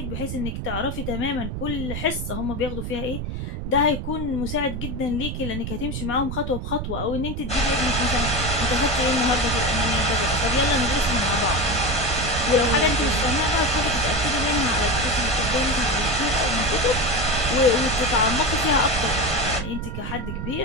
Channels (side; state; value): right; noise; rumble, 5 dB below the sound